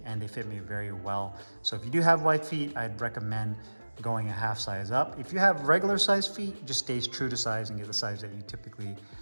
and they fit me very well. So if you do have wide feet, I'd recommend going a half size up. If you have regular size feet, just stay true to size and get the size that you typically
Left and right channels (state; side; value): inverted; both; correlation -1.00